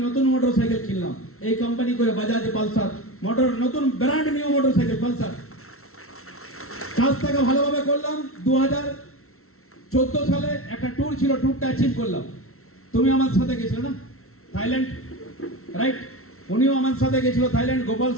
নতুন মোটরসাইকেল কিনলাম, এই কোম্পানি করে বাজাজ পালসার নতুন ব্র্যান্ড নিউ মোটরসাইকেল পালসার। কাজটাকে ভালোভাবে করলাম। 2014 সালে একটা ট্যুর ছিল, ট্যুরটা অ্যাচিভ করলাম। তুমি আমার সাথে গেছিলে না থাইল্যান্ড, রাইট? উনিও আমার সাথে গেছিল থাইল্যান্ড, গোপাল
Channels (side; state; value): right; late; 0.63 ms